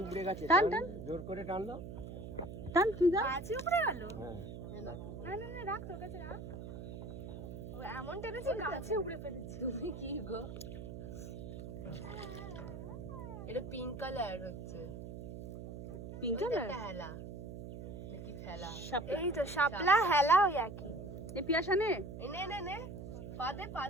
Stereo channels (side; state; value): right; noise; hum, 9 dB below the sound